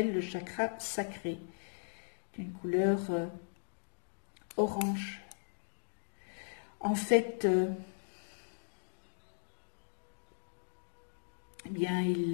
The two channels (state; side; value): silent; right; digital silence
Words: le chakra sacré, d'une couleur orange. En fait, il